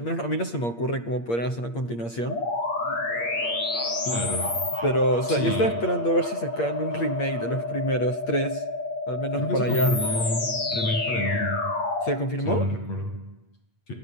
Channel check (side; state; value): right; late; 8.6 ms